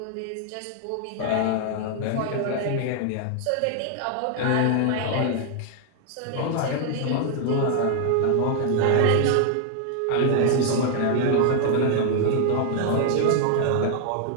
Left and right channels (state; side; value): different; both; correlation 0.00